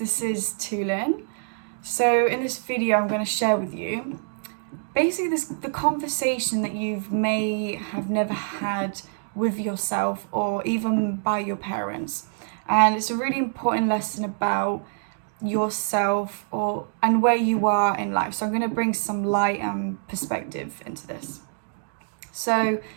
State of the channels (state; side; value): silent; left; digital silence